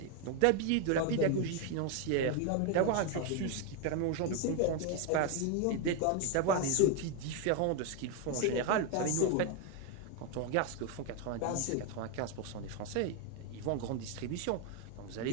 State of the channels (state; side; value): different; both; correlation 0.01